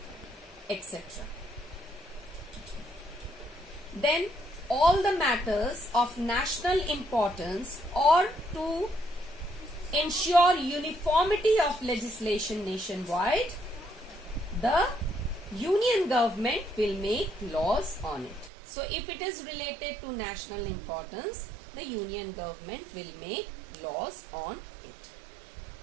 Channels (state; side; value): drops out; left; at 18.5 s